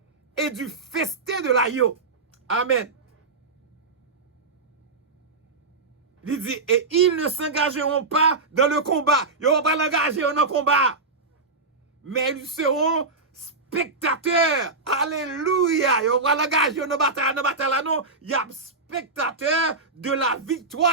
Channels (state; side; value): quieter; left; 3.7 dB